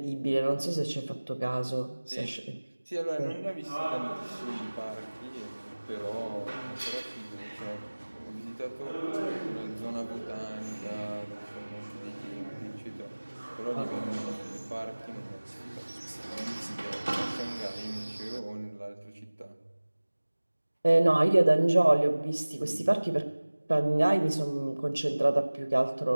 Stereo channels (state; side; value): inverted; both; correlation -1.00